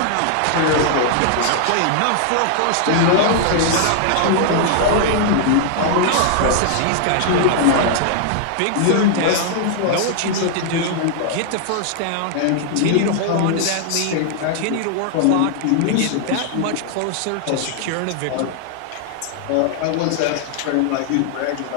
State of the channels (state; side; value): different; both; correlation 0.00